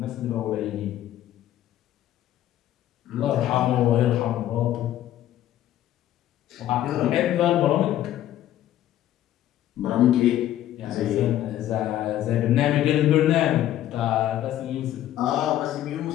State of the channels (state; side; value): quieter; right; 12.7 dB